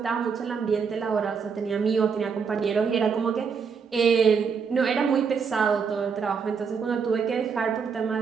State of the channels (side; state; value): left; quieter; 6.0 dB